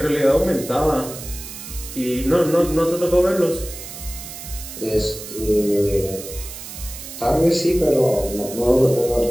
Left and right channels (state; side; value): noise; right; hiss, 12 dB below the sound